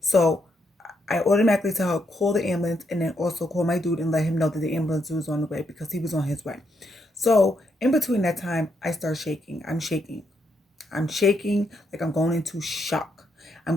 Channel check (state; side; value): normal; both; correlation 0.78